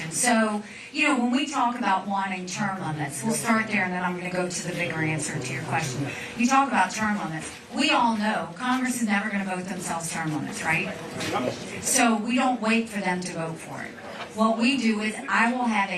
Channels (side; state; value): both; identical; correlation 1.00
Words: So, when we talk about wanting term limits, we'll start there and then I'm going to go to the bigger answer to your question. You talk about term limits. We all know Congress is never going to vote themselves term limits, right? So we don't wait for them to vote for it. What we do is I will have